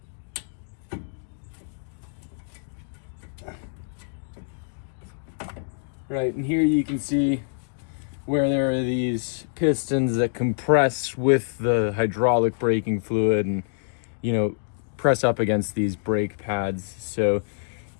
Right, and here you can see where there are these pistons that compress with the hydraulic braking fluid and, press up against these brake pads. So,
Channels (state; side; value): silent; right; digital silence